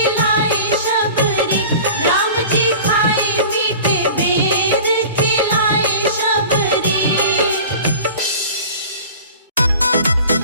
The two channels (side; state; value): both; inverted; correlation -0.40